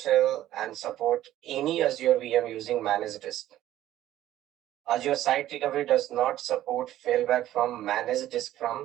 and support any Azure VM using managed disk. Azure Site Recovery does not support failback from managed disk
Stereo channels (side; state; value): left; quieter; 13.5 dB